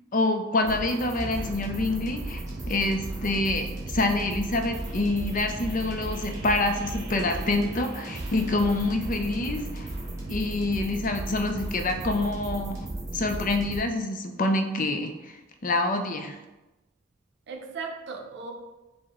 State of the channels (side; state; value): both; normal; correlation 0.42